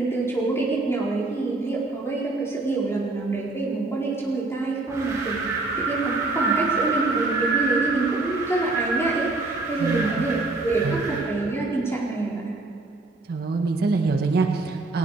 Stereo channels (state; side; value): quieter; left; 3.2 dB